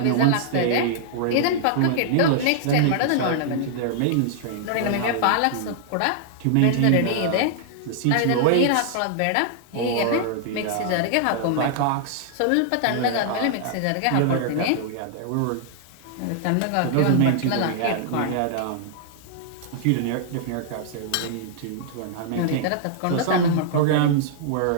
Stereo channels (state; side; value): different; both; correlation -0.01